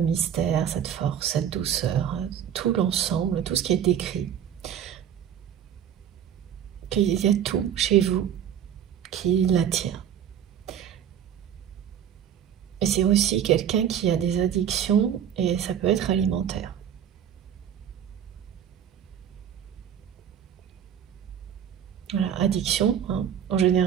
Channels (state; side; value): quieter; left; 9.2 dB